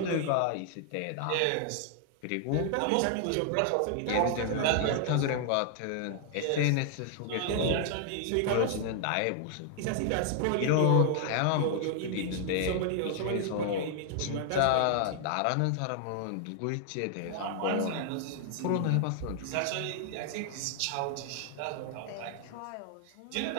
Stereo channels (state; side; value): different; both; correlation 0.00